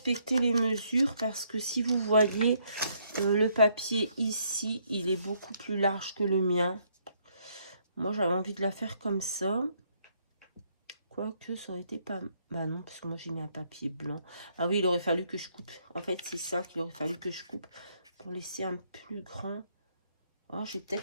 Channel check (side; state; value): both; inverted; correlation -0.70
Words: les mesures parce que si vous voyez le papier ici, il est beaucoup plus large que le mien. Moi, j'avais envie de la faire comme ça. Quoique, ça aurait été pas... Bah non, parce que moi, j'ai mis un papier blanc. Ah oui, il aurait fallu que je coupe. En fait, c'est ça qu'il aurait fallu que je coupe pour laisser un plus grand. Oh, je vais